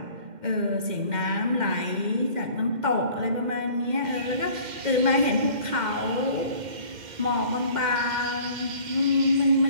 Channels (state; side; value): late; left; 2.1 ms